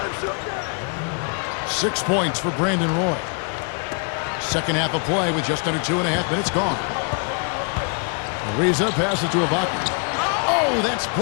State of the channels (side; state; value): right; quieter; 38.5 dB